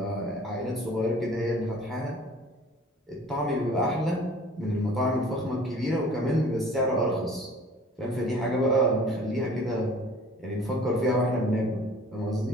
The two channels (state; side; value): normal; both; correlation 0.48